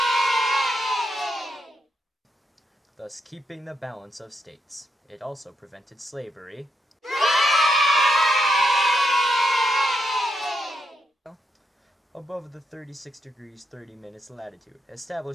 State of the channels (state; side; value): normal; both; correlation 0.81